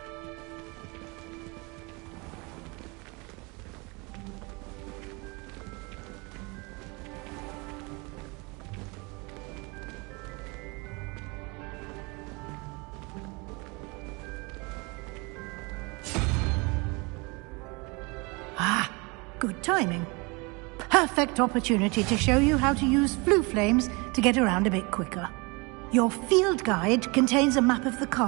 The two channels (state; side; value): quieter; left; 28.0 dB